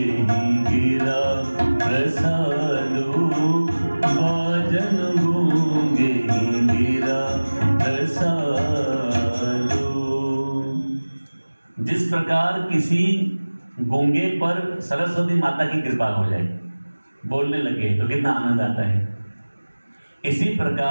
गिरा प्रसादो बाजनु गूंगे गिरा प्रसादो। जिस प्रकार किसी गूंगे पर सरस्वती माता की कृपा हो जाए, बोलने लगे तो कितना आनंद आता है। इसी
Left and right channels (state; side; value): inverted; both; correlation -1.00